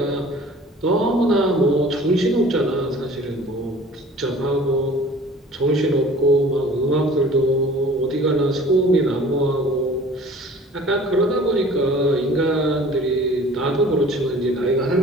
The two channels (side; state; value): both; normal; correlation 0.47